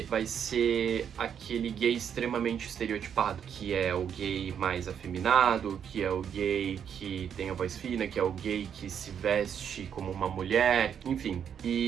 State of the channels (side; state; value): left; quieter; 8.2 dB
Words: vai ser aquele gay extremamente estereotipado, que é o gay mais afeminado, que é o gay que tem a voz fina, que é o gay que se veste como uma mulher, enfim.